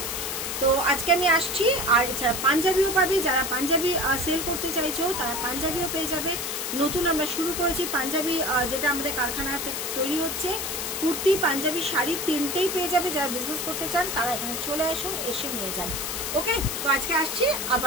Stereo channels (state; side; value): noise; left; hiss, 3 dB below the sound